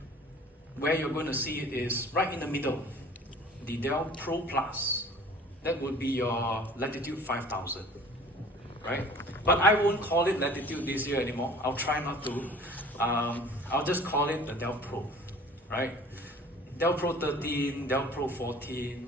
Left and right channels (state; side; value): normal; both; correlation 0.47